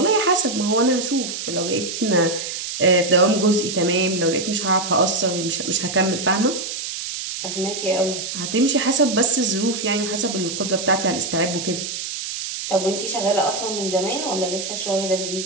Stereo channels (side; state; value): right; noise; hiss, 6 dB below the sound